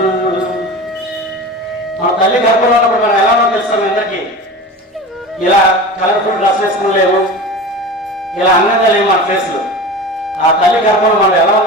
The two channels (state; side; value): normal; both; correlation 0.32